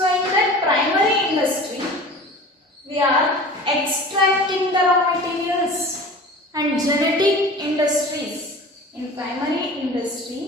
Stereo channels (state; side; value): normal; both; correlation 0.39